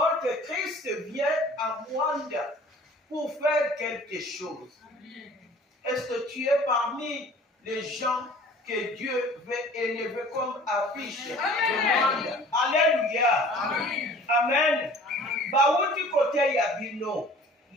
que Christ vient à Mwanda pour faire quelque chose. Est-ce que tu es parmi les gens que Dieu veut élever comme affiche de Mwanda? Alléluia. Amen. Baouti côté Yabino,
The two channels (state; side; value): normal; both; correlation 0.48